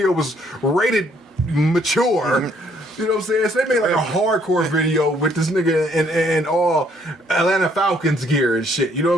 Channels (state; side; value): normal; both; correlation 0.66